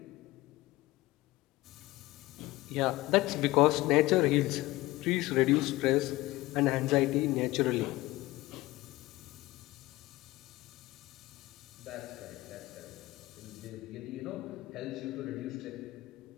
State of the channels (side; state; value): right; quieter; 18.9 dB